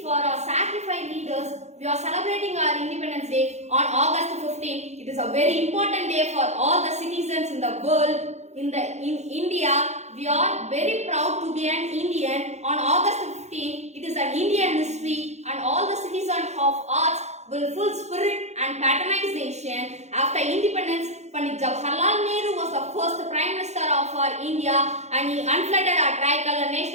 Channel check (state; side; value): late; left; 0.33 ms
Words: for our sacrificed leaders, we are celebrating our Independence Day on August 15th. It is a very important day for all the citizens in the world. In India, we are very proud to be an Indian. On August 15th, it is an Indian history, and all the citizens of arts will full spirit and patronization. After independence, Pandit Jawaharlal Nehru was the first Prime Minister of our India, and he unfurled our tricolor